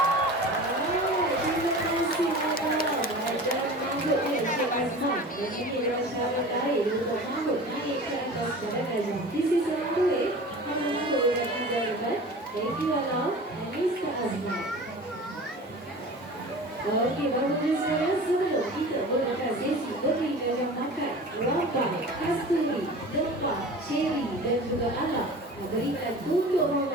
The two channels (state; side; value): normal; both; correlation 0.37